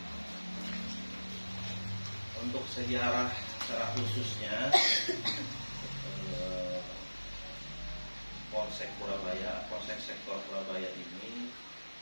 Untuk sejarah secara khususnya Polsek Surabaya, Polsek sektor Surabaya ini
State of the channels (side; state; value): both; inverted; correlation -1.00